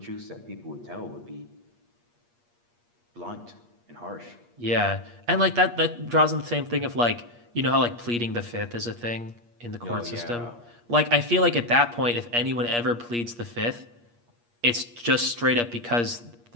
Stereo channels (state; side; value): late; left; 8.4 ms